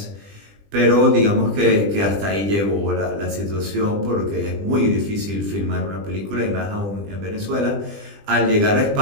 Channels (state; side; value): late; left; 20 ms